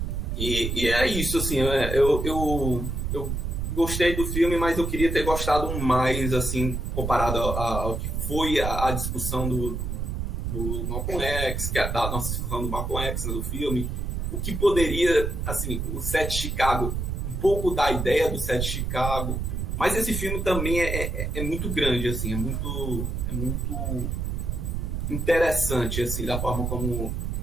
E é isso, assim, eu gostei do filme, mas eu queria ter gostado mais, assim, comparado ao que foi a discussão do Malcolm X, da nossa discussão do Malcolm X, né, do filme, o que poderia, assim, o Sete Chicago, um pouco da ideia do Sete Chicago, mas esse filme também é muito grande, assim, é muito interessante, assim, da forma como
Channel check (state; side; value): noise; right; rumble, 2 dB below the sound